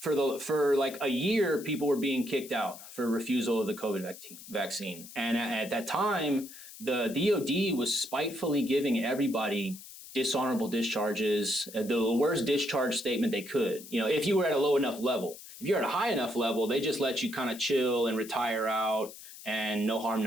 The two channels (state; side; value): noise; left; hiss, 16 dB below the sound